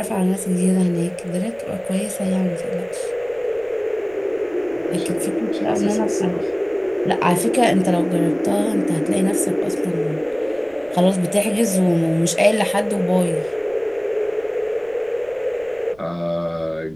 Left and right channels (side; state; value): right; noise; rumble, 27 dB below the sound